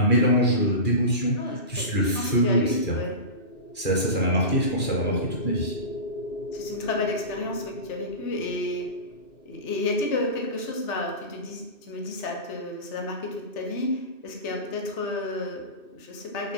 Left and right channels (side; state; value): right; late; 2.6 ms